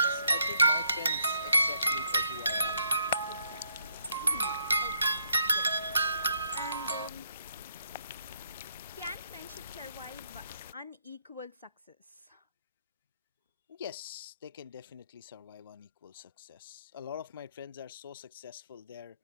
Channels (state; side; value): inverted; both; correlation -0.72